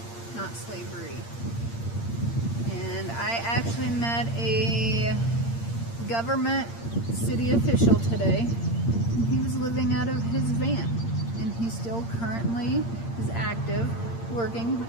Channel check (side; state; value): right; late; 8.7 ms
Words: not slavery. And I actually met a government city official today, and he was living out of his van, and he still currently is active, working.